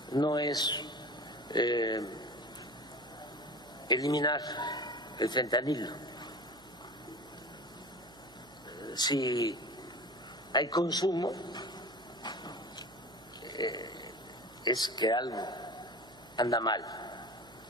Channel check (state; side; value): noise; right; hum, 25 dB below the sound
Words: no es eliminar el fentanilo. Si hay consumo, es que algo anda mal